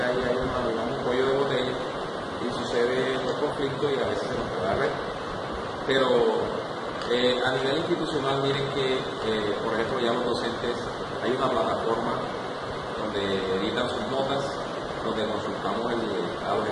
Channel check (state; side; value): identical; both; correlation 1.00